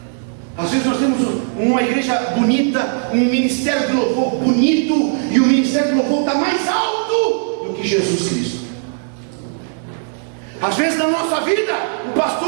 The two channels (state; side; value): silent; left; 61 dB below the other